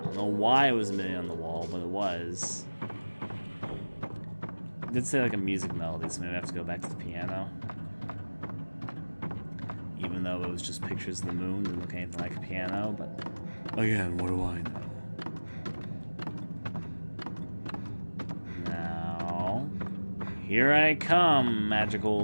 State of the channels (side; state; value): both; inverted; correlation -1.00